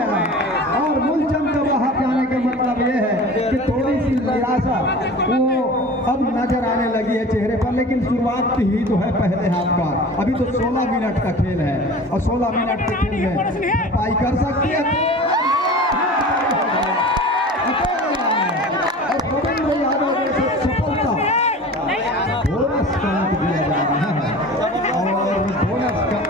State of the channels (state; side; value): normal; both; correlation 0.38